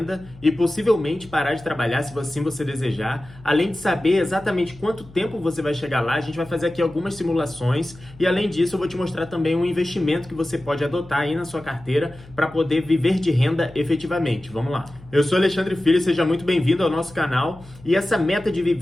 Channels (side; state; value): left; noise; hum, 21 dB below the sound